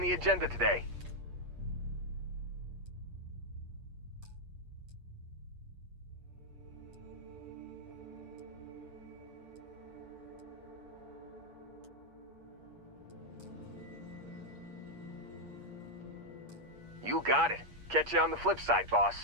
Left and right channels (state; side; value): late; left; 8.4 ms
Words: agenda today? You got it. Catch you on the flip side, boss.